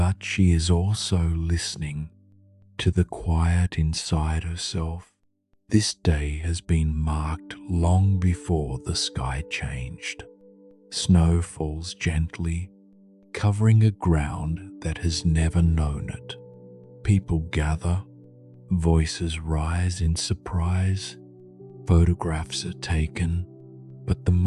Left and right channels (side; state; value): both; identical; correlation 1.00